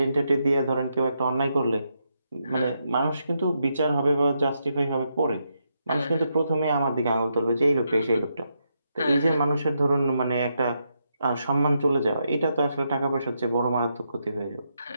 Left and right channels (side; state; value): both; inverted; correlation -0.81